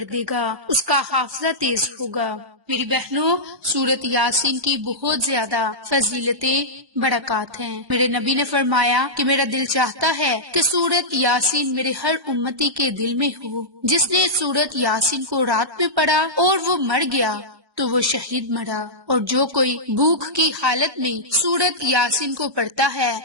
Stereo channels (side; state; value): left; late; 1.1 ms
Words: دے گا، اس کا حافظہ تیز ہوگا۔ میری بہنوں، سورت یاسین کی بہت زیادہ فضیلتیں، برکات ہیں۔ میرے نبی نے فرمایا کہ میرا دل چاہتا ہے کہ سورت یاسین میرے ہر امتی کے دل میں ہو۔ جس نے سورت یاسین کو رات میں پڑھا اور وہ مر گیا تو وہ شہید مرا، اور جو کوئی بھوک کی حالت میں سورت یاسین کو پڑھتا ہے